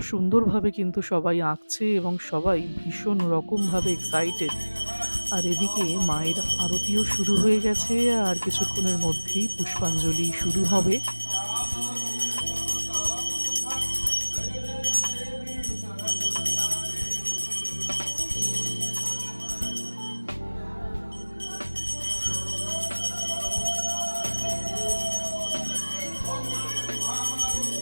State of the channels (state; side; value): inverted; both; correlation -1.00